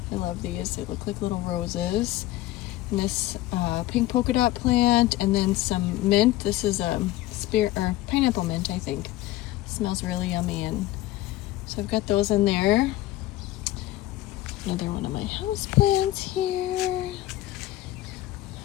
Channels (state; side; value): quieter; right; 15.9 dB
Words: I love these. They look like little roses. And this pink polka dot plant, and then some mint. This is a pineapple mint, I think. Smells really yummy, and so I've got those in there. Another one of my house plants here,